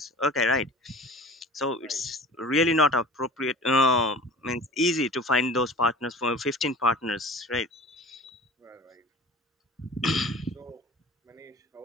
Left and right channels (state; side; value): normal; both; correlation 0.40